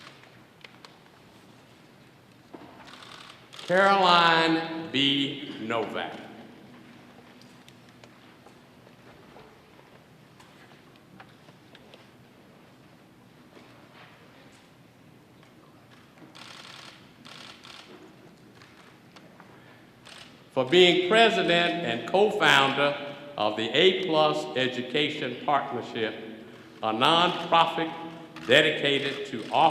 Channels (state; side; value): identical; both; correlation 1.00